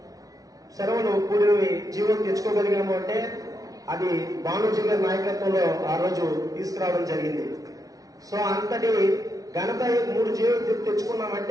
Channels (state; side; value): late; left; 0.18 ms